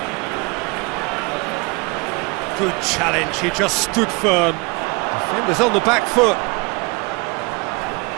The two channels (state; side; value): quieter; left; 27.9 dB